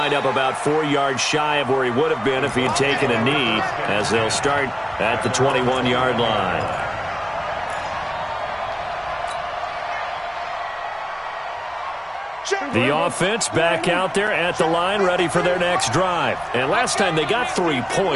up about 4 yards shy of where he would have been if he had taken a knee, as they'll start at the 21-yard line. The offense back out there at the line, ready for their next drive. And last time they got 3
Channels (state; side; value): identical; both; correlation 1.00